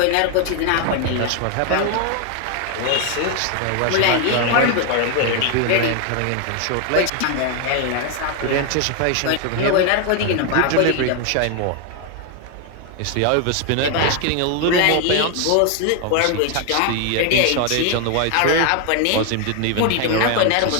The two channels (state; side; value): different; both; correlation 0.01